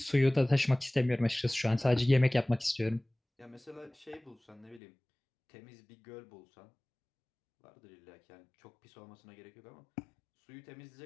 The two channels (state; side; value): drops out; right; at 4.8 s